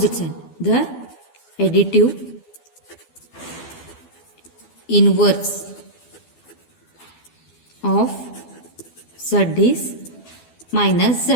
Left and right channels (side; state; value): right; late; 12 ms